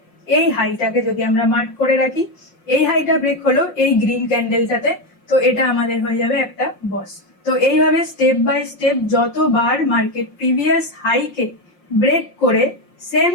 এই হাইটাকে যদি আমরা মার্ক করে রাখি, এই হাইটা ব্রেক হলো এই গ্রিন ক্যান্ডেলটাতে, তো এটা আমাদের হয়ে যাবে একটা বস। তো এইভাবে স্টেপ বাই স্টেপ যতবার মার্কেট প্রিভিয়াস হাইকে ব্রেক করে সেম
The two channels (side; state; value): right; late; 5.6 ms